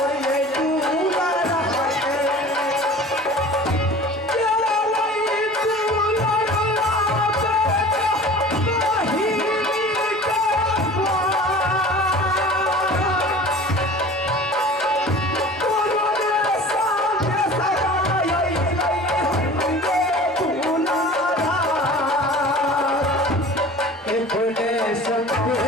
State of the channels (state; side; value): normal; both; correlation 0.42